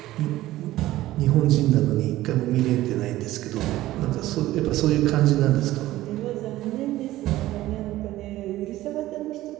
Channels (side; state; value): left; quieter; 15.8 dB